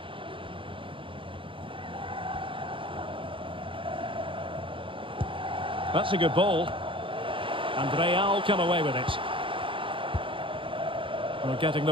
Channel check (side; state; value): left; late; 0.25 ms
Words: That's a good ball. And Real come away with it. We're getting